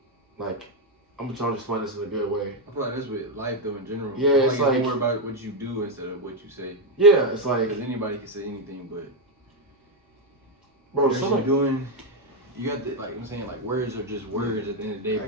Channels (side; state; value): both; normal; correlation 0.03